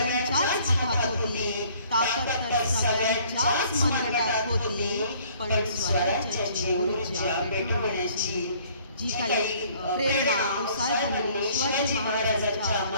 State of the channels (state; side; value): inverted; both; correlation -0.58